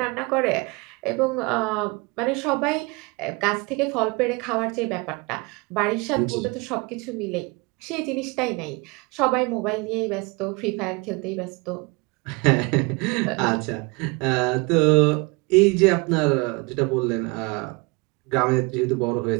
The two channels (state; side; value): quieter; left; 27.6 dB